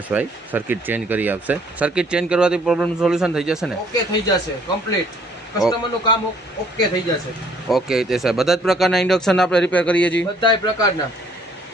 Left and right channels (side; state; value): both; normal; correlation 0.61